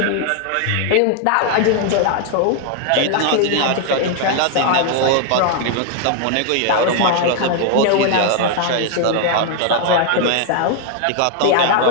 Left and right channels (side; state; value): both; different; correlation 0.00